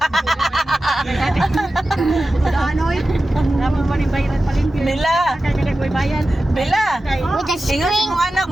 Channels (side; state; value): both; normal; correlation 0.94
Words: Bella. With the Ingat string. mong anak,